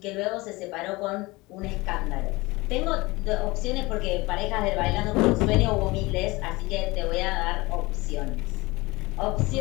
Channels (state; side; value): quieter; right; 22.4 dB